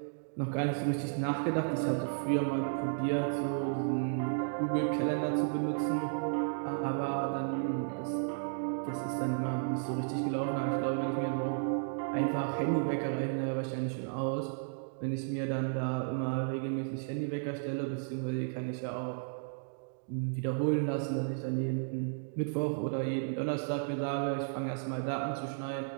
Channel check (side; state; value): left; silent; digital silence